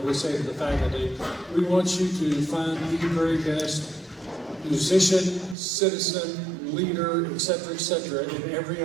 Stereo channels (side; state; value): left; drops out; at 5.6 s